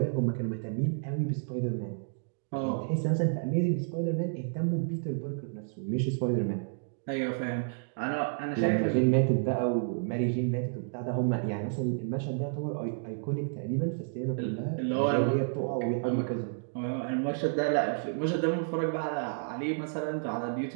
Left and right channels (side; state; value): left; silent; digital silence